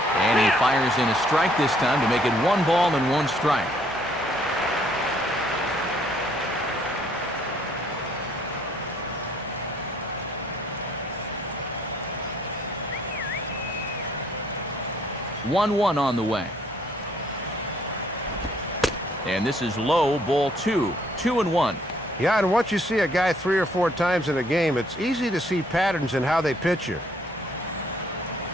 And he fires in a strike this time to make it 1 ball and 1 strike. One on the way. And this is low, ball 2. 2-1. Yeah, and once you see a guy 3 or 4 times in a game, it's easy to see patterns in how they pitch you.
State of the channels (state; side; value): normal; both; correlation 0.65